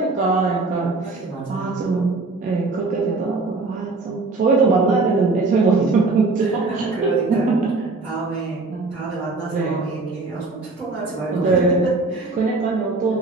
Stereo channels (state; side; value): quieter; left; 3.5 dB